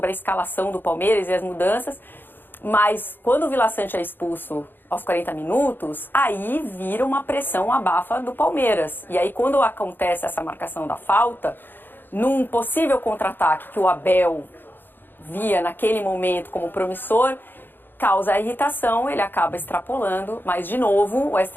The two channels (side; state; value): right; late; 0.095 ms